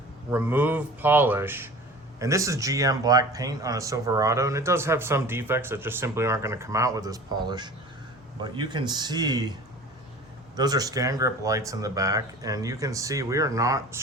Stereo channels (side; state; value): both; normal; correlation 0.40